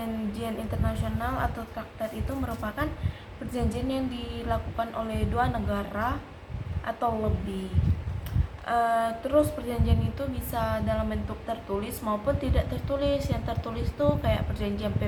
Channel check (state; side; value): identical; both; correlation 1.00